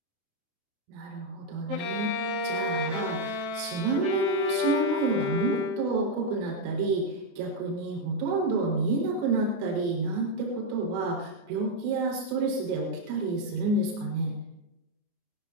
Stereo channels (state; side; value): late; left; 28 ms